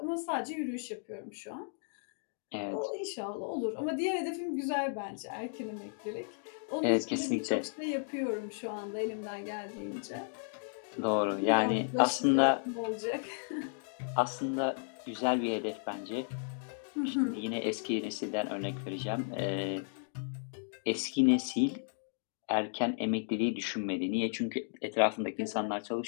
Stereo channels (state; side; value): silent; right; digital silence